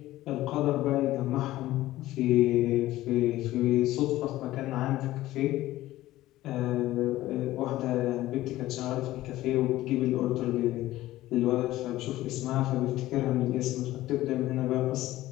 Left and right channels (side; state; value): right; quieter; 15.9 dB